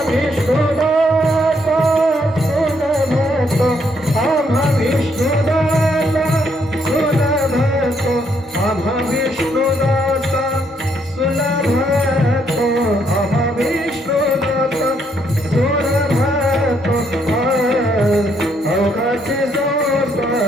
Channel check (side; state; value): both; normal; correlation 0.72